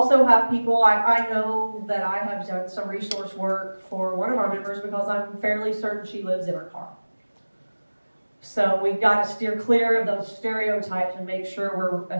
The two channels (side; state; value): both; inverted; correlation -1.00